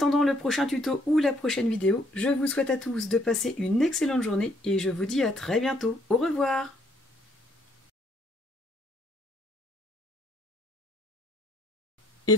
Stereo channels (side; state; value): both; normal; correlation 0.67